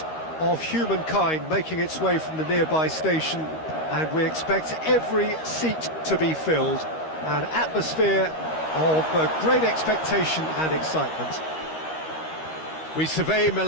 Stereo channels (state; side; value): late; right; 13 ms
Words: of humankind making its way from the nearby station, and we expect every seat to be filled. An atmosphere of great expectation and excitement. We survey